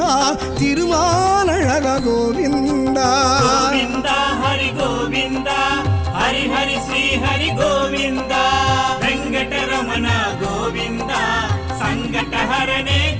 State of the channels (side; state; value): both; identical; correlation 1.00